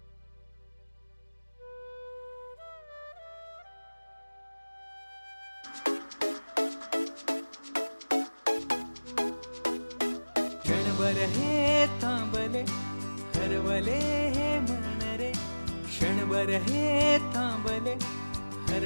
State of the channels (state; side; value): inverted; both; correlation -1.00